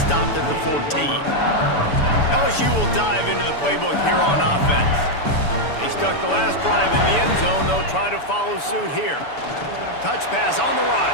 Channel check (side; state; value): right; late; 6.9 ms